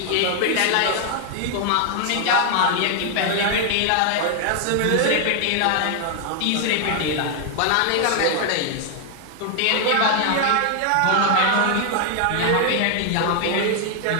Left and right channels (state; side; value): different; both; correlation 0.00